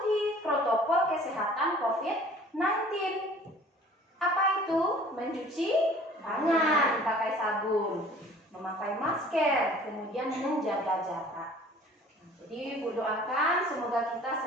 protokol kesehatan COVID-19. Apa itu? Mencuci tangan pakai sabun, memakai masker, kemudian menjaga jarak. Jadi Ibu doakan semoga kita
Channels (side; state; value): both; normal; correlation 0.50